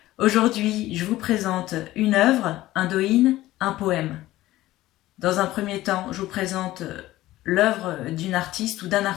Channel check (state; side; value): quieter; right; 16.1 dB